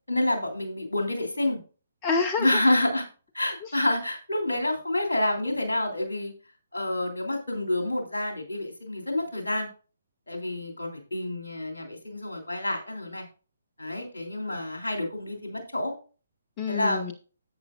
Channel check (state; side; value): inverted; both; correlation -0.88